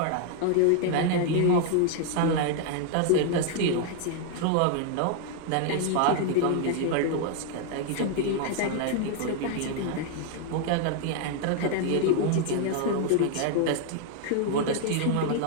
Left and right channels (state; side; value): different; both; correlation 0.00